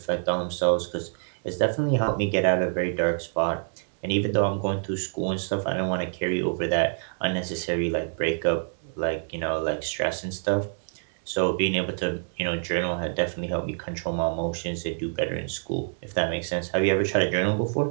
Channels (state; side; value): silent; left; digital silence